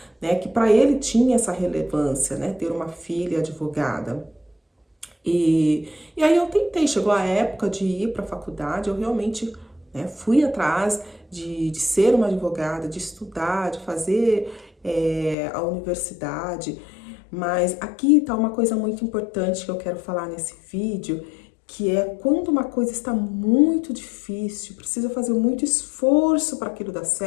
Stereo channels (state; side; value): drops out; right; at 15.4 s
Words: né, que para ele tinha essa relevância, né, ter uma filha advogada. E aí eu tentei, chegou a época de ir para a faculdade, eu realmente, né, fui atrás de ser uma advogada, de estudar, de fazer a universidade, mas aqui está uma coisa muito importante que eu quero falar nesse vídeo, que é quando uma coisa está muito difícil, precisa fazer muito esforço para aquilo dar